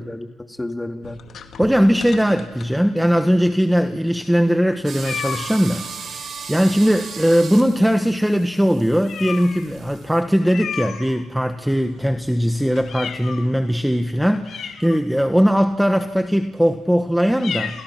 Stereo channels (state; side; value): normal; both; correlation 0.98